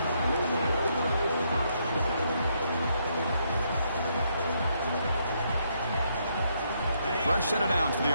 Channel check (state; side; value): inverted; both; correlation -0.75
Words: Fresh set of downs for